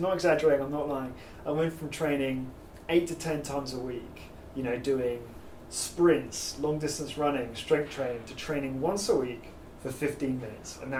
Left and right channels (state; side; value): identical; both; correlation 1.00